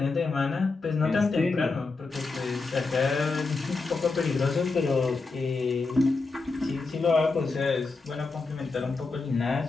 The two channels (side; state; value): right; quieter; 3.9 dB